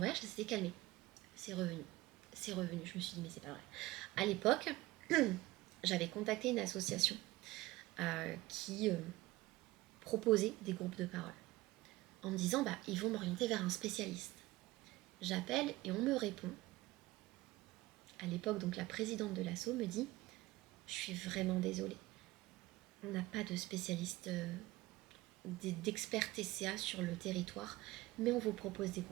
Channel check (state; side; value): quieter; left; 19.0 dB